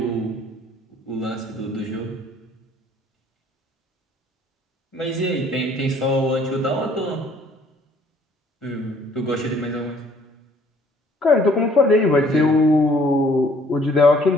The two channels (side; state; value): both; normal; correlation 0.59